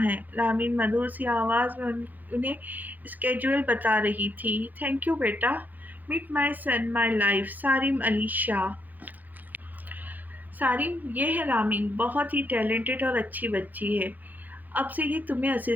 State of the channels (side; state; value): left; late; 0.083 ms